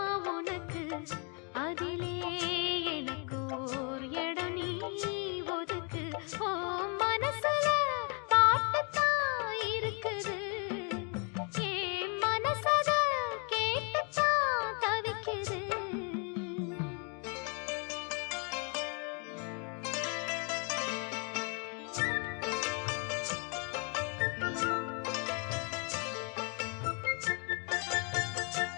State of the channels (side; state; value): right; quieter; 36.5 dB